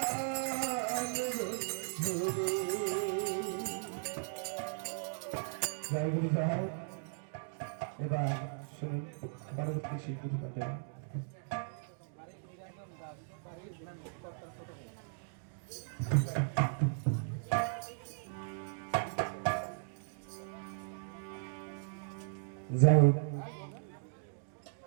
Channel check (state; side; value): silent; left; digital silence